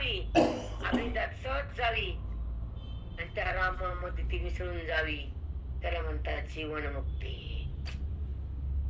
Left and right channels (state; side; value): identical; both; correlation 1.00